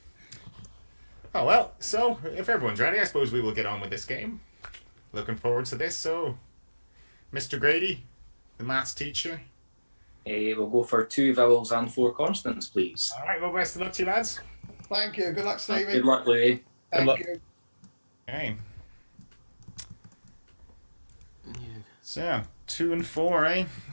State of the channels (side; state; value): both; inverted; correlation -1.00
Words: Oh well. So if everyone's ready, I suppose we will get on with this game. Looking forward to this. So, Mr. Grady, the maths teacher. We'll go for 2 vowels and 4 consonants, please. All right. Well, best of luck to you, lads. Thank you. Good luck, Stevie. Good luck, Louie. Thank you. Okay. So 2 and 4, eh?